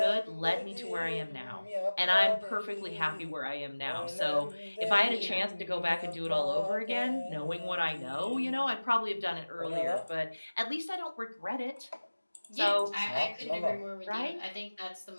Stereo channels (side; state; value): both; inverted; correlation -1.00